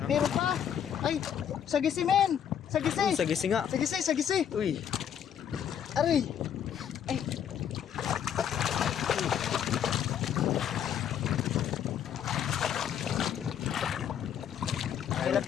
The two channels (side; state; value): right; quieter; 9.0 dB